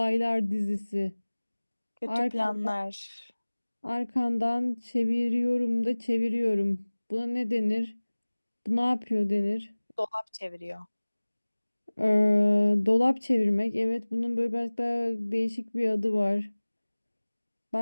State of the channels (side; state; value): both; inverted; correlation -1.00